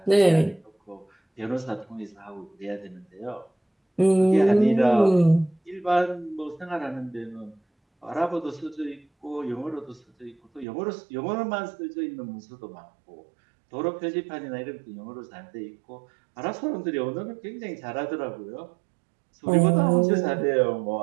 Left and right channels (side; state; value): left; drops out; at 10.7 s